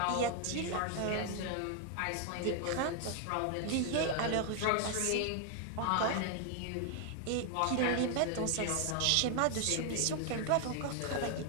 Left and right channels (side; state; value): both; different; correlation 0.00